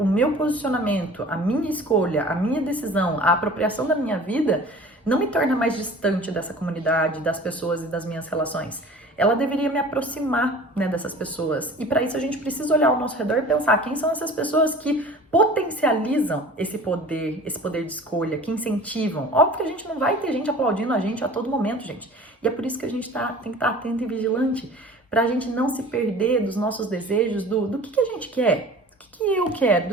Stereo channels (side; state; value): both; normal; correlation 0.43